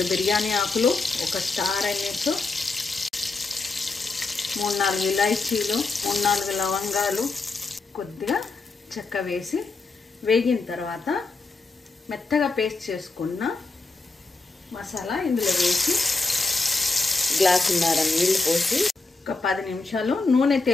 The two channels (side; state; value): right; quieter; 3.7 dB